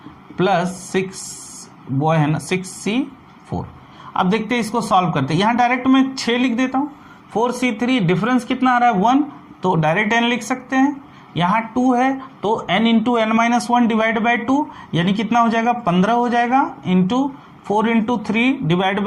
plus 6 boy है ना, 6C4. अब देखते हैं इसको सॉल्व करते हैं. यहां डायरेक्ट मैं 6 लिख देता हूं. 4C3 डिफरेंस कितना आ रहा है 1, तो डायरेक्ट n लिख सकते हैं. यहाँ 2 है तो n into N minus one divide by 2 यानी कितना हो जाएगा 15 हो जाएगा, इंटू 4 इंटू 3 डिवाइड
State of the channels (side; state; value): both; identical; correlation 1.00